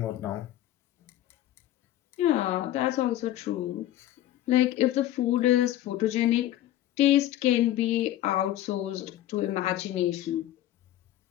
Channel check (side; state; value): right; quieter; 13.5 dB